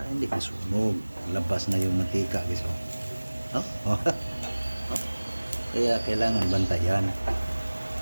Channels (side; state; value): both; inverted; correlation -1.00